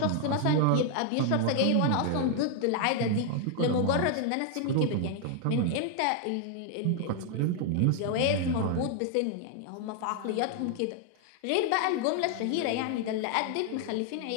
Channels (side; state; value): both; different; correlation 0.00